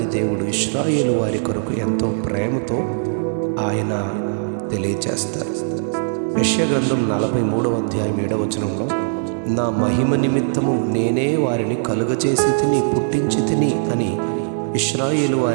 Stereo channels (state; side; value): silent; left; digital silence